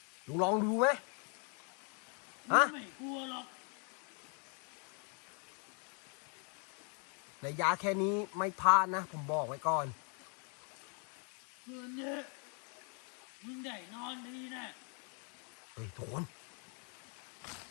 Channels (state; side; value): quieter; right; 39.0 dB